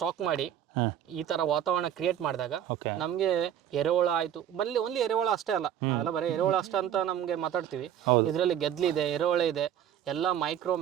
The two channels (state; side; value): quieter; left; 10.2 dB